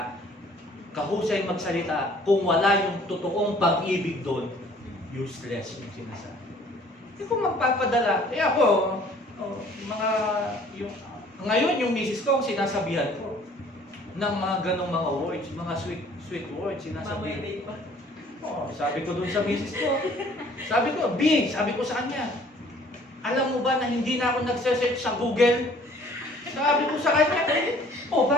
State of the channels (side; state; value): both; normal; correlation 0.55